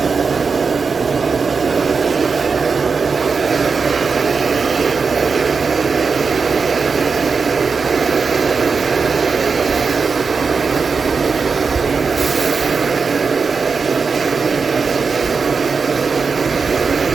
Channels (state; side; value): quieter; left; 5.1 dB